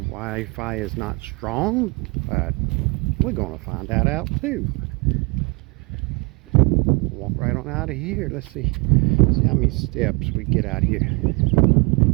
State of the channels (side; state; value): left; quieter; 29.6 dB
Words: is not strong, but we're going to find that out too. Walk right on out of here. Let's see how many steps we get out here,